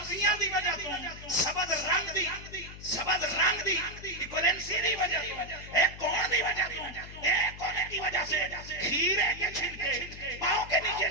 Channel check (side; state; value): left; noise; hum, 14 dB below the sound